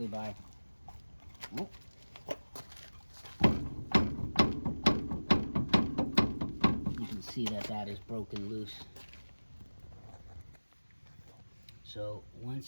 by you can see that is broken loose. So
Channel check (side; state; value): both; inverted; correlation -1.00